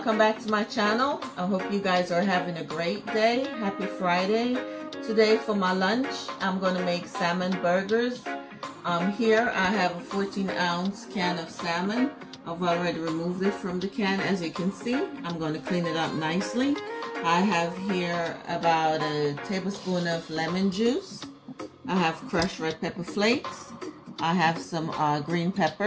back to my channel. I hope you guys are having a great day. Happy Friday. Today for my lunch I'm going to make salmon burgers. Here I have a 14-ounce can of salmon. I've already removed it from the can. As you can see, I'm going to clean it up nicely. I have here about a tablespoon of lemon juice. I have crushed red pepper flakes. I have some green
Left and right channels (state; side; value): identical; both; correlation 1.00